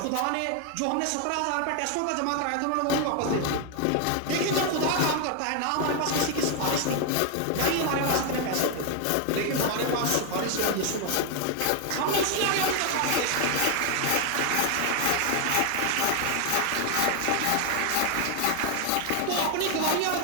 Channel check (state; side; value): different; both; correlation 0.00